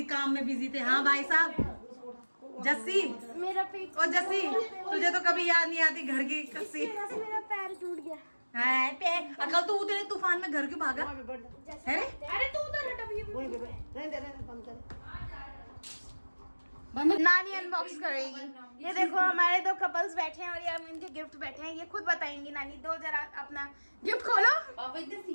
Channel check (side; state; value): both; inverted; correlation -1.00